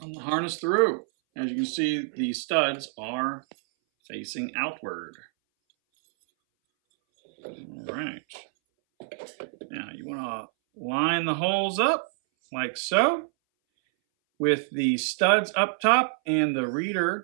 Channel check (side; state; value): left; silent; 59 dB below the other